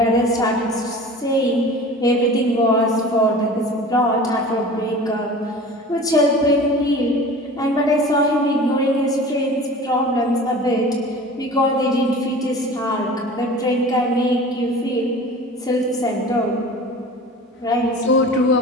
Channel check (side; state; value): both; normal; correlation 0.39